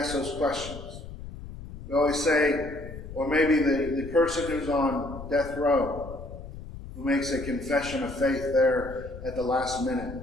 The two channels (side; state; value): left; noise; rumble, 12 dB below the sound